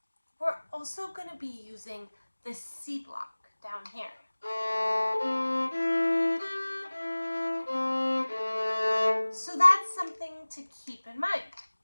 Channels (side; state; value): both; inverted; correlation -1.00